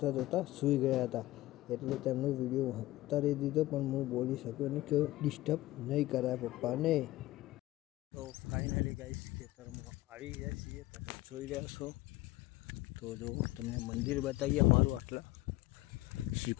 જોતા સૂઈ ગયા હતા, એટલે તેમનો વિડીયો ઉતારી દીધો, પણ હું બોલી શક્યો નહીં કે ડિસ્ટર્બ નહીં કરાય પપ્પાને. તો ફાઇનલી ગાઈસ ખેતરમાં આવી ગયા છીએ. તમે જોઈ રહ્યા છો. તો જો તમને મંદિર બતાવીએ અમારું. આટલા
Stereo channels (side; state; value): right; quieter; 17.3 dB